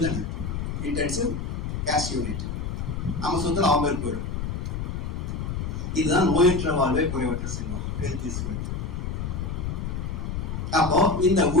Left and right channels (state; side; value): noise; left; rumble, 3 dB below the sound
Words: தானே, intensive cash unit. நம்ம சொத்துல அவங்க போயிடும். இதுதான் நோயற்ற வாழ்வை குறைவற்ற செல்வம், health is wealth. அப்போ இந்த